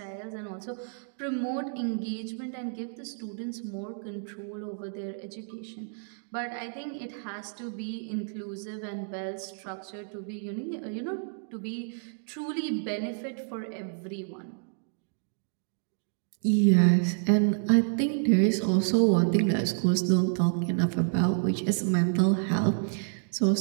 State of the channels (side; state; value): left; silent; digital silence